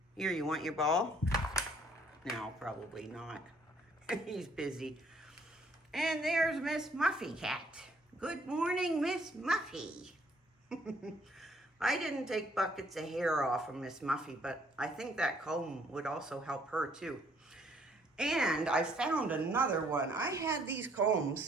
Here, you want your ball? No, probably not. He's busy. And there's Miss Muffy cat. Good morning, Miss Muffy. I didn't take buckets of hair off of Miss Muffy, but I think that comb would also help her too. And I found another one. I had these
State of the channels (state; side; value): normal; both; correlation 0.64